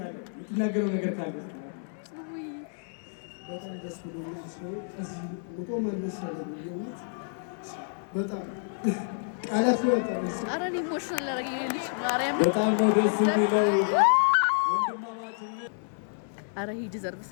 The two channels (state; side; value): silent; right; 58 dB below the other